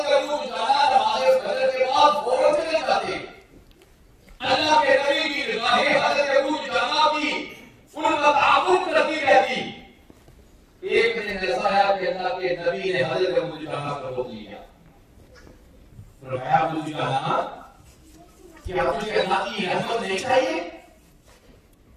ابو دجانہ نماز فجر کے بعد فوراً چلے جاتے. اللہ کے نبی کی نگاہیں حضرت ابو دجانہ کی ان کا تعاقب کرتی رہتی. ایک دن ایسا ہے کہ اللہ کے نبی نے حضرت ابو دجانہ کو روک لیا. فرمایا ابو دجانہ کیا تجھے اللہ کی رحمت نہیں چاہیے؟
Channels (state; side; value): identical; both; correlation 1.00